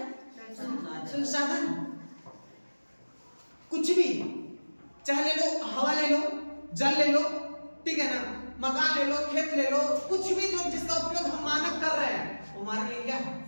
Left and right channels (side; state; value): both; inverted; correlation -1.00